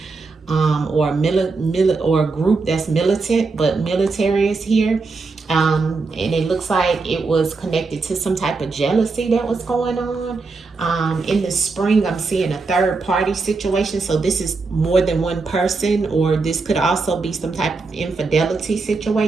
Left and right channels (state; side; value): quieter; left; 4.0 dB